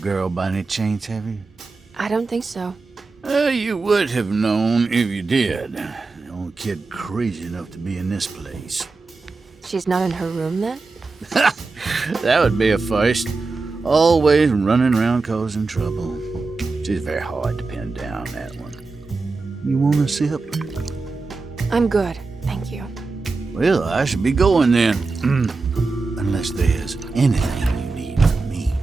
by any chance, have you? I don't think so. You would have known if you did. The only kid crazy enough to be in this place. She's not in her room then? That would be a first. Always running around causing trouble. She's very hard to pin down, that one. You want a sip? I'm good, thank you. Well, I should be going then. Unless there's anything you need from me.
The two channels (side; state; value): left; quieter; 3.9 dB